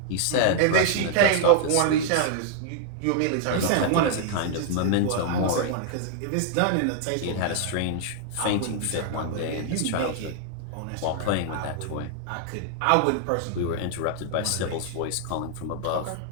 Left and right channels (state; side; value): different; both; correlation 0.00